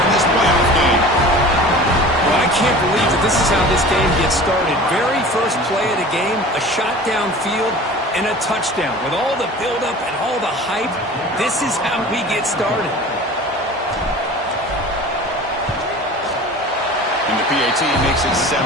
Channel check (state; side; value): normal; both; correlation 0.40